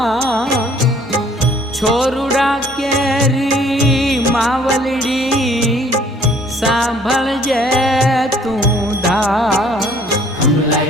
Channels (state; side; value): normal; both; correlation 0.58